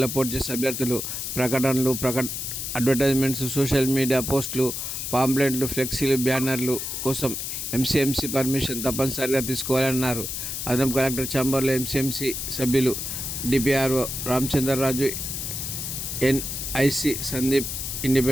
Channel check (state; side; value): noise; left; hiss, 4 dB below the sound